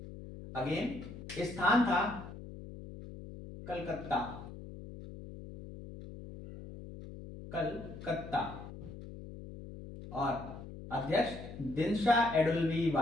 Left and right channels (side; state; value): left; noise; hum, 12 dB below the sound